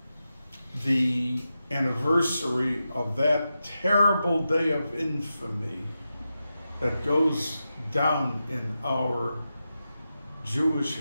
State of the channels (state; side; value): inverted; both; correlation -0.90